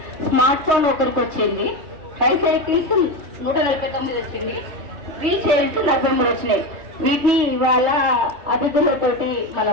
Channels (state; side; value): late; left; 3.2 ms